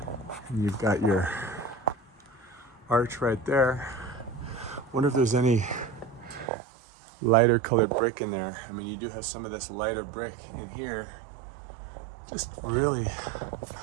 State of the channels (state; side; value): drops out; left; at 6.5 s